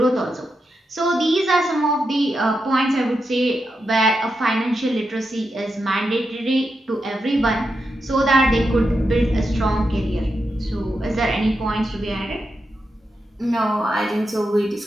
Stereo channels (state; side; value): normal; both; correlation 0.87